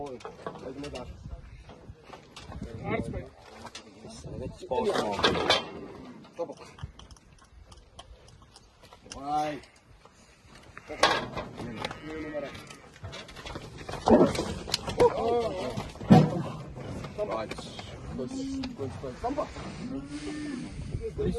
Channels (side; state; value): both; identical; correlation 1.00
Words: Weet je daar. Hartstikke. Stop op. Hai. Dit